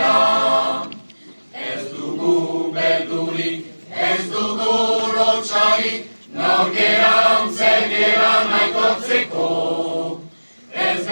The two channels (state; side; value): inverted; both; correlation -1.00